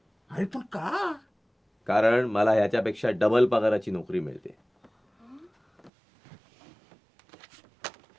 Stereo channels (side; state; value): left; drops out; at 5.9 s